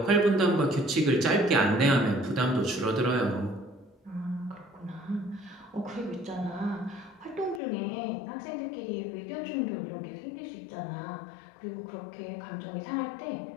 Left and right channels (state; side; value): drops out; right; at 7.6 s